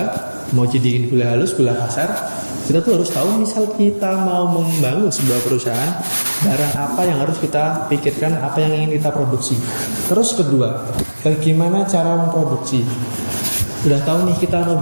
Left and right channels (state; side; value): inverted; both; correlation -1.00